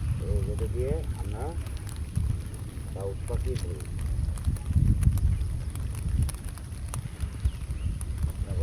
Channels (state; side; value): identical; both; correlation 1.00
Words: এই যেটা দিয়ে আমরা ডাউক পাখি ধরি।